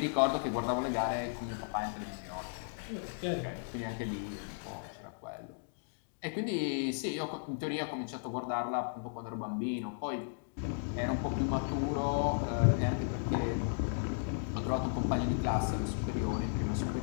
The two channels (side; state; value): right; silent; digital silence